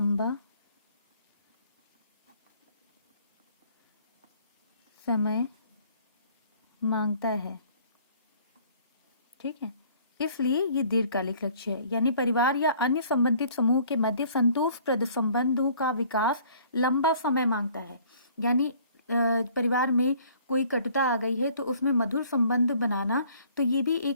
समय मांगता है। ठीक है, इसलिए ये दीर्घकालिक लक्ष्य है, यानी परिवार या अन्य संबंधित समूह के मध्य संतोषप्रद संबंधों का विकास लंबा समय मांगता है। यानी परिवार में कोई कटुता आ गई है तो उसमें मधुर संबंध बनाना, तो ये भी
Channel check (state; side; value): inverted; both; correlation -0.56